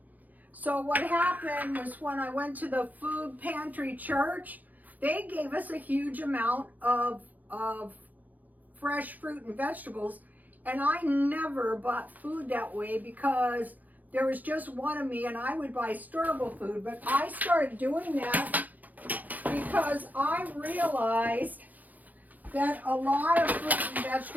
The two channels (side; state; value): left; late; 0.081 ms